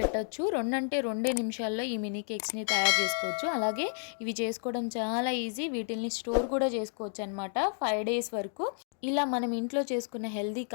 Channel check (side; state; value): right; silent; 57 dB below the other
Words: 2 నిమిషాల్లో ఈ మినీ కేక్స్ని తయారు చేసుకోవచ్చు. అలాగే ఇవి చేసుకోవడం చాలా ఈజీ. వీటిల్ని స్టోర్ కూడా చేసుకోవచ్చు అనమాట 5 days వరకు. ఇలా మనం ఇంట్లో చేసుకున్న హెల్దీ